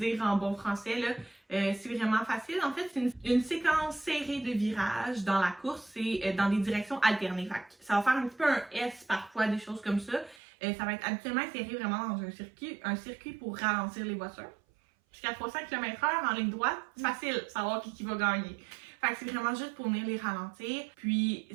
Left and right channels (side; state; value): left; drops out; at 10.4 s